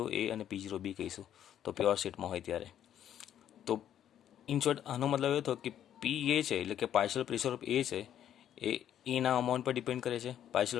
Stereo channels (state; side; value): quieter; right; 10.4 dB